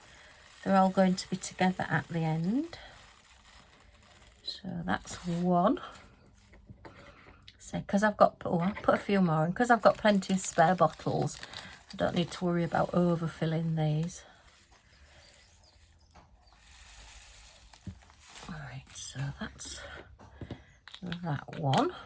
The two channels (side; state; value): both; identical; correlation 1.00